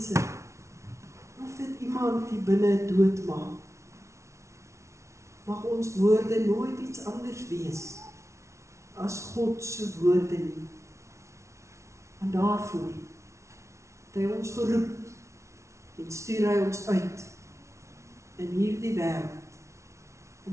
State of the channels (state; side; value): late; left; 0.14 ms